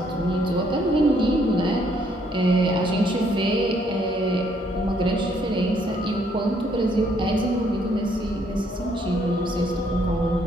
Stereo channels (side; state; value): both; normal; correlation 0.68